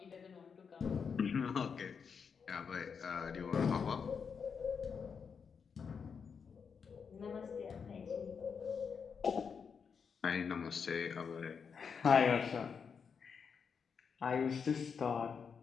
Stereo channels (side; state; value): right; quieter; 6.2 dB